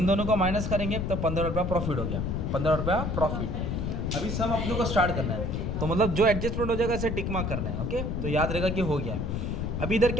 दोनों को माइनस करेंगे तो 15 रुपया प्रॉफिट हो गया, 15 रुपया प्रॉफिट। अभी सब अपने को स्टार्ट करना है, तो मतलब जो एडजस्टमेंट हो जाएगा इसे टिक मार्क करना है, ओके। तो याद रहेगा कि हो गया है। अभी इधर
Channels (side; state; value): left; noise; rumble, 1 dB below the sound